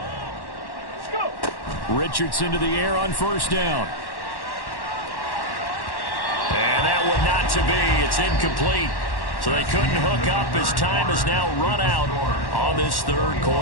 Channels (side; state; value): right; late; 1.1 ms